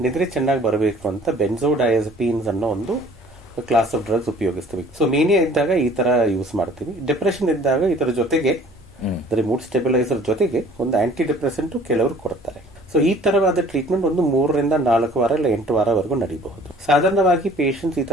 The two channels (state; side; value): normal; both; correlation 0.52